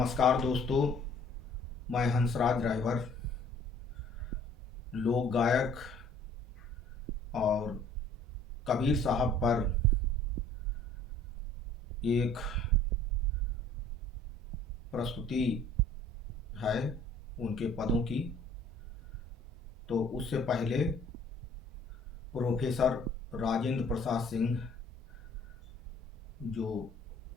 दोस्तों, मैं हंसराज ड्राइवर, लोक गायक और कबीर साहब पर एक प्रस्तुति है उनके पदों की। तो उससे पहले प्रोफेसर राजेंद्र प्रसाद सिंह, जो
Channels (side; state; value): both; normal; correlation 0.54